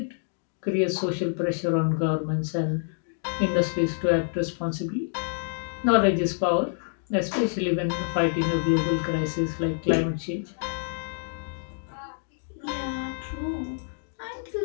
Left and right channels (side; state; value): right; silent; digital silence